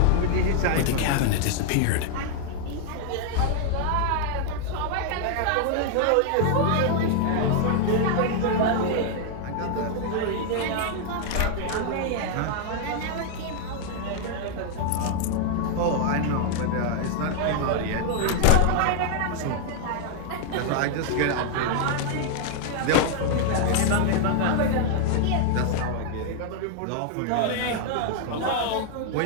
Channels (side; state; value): both; different; correlation 0.00